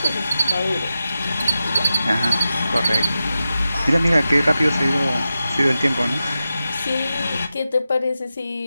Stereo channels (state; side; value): inverted; both; correlation -0.91